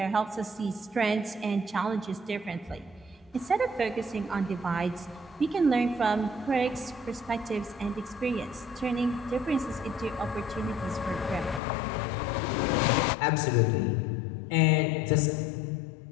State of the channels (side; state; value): right; drops out; at 11.6 s